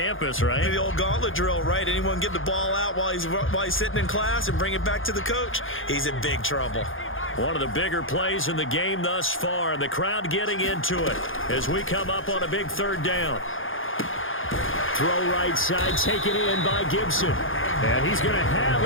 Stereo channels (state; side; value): late; right; 0.59 ms